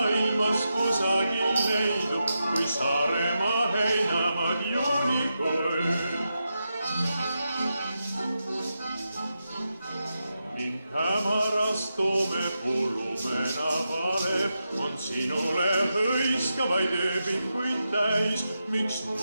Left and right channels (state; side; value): inverted; both; correlation -0.88